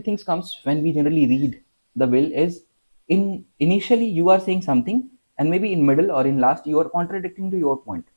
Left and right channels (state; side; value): inverted; both; correlation -1.00